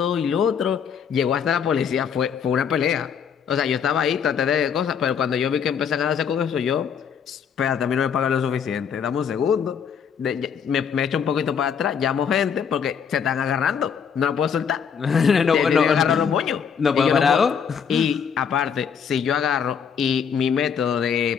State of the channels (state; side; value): quieter; right; 7.2 dB